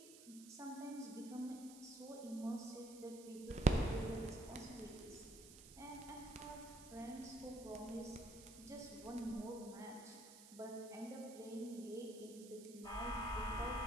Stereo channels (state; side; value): noise; right; hiss, 16 dB below the sound